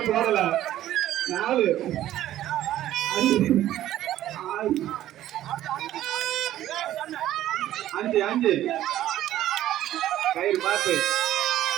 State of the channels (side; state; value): left; quieter; 13.1 dB